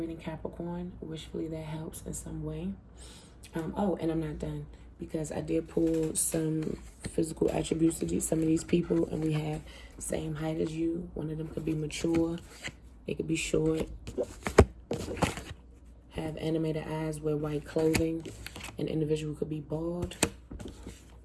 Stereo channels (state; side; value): identical; both; correlation 1.00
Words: Capricorn. Wishfully that helps in some way. Oh, and I'm not done, because I did pull some physical attributes to some of these people, and we have same height as you. One of them could be mature. They could be short. Have animated eyes, wear white clothing. An individual could be bald.